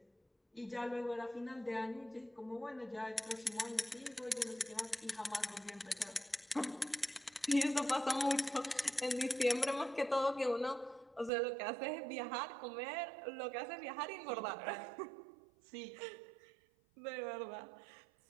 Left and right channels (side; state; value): left; drops out; at 11.3 s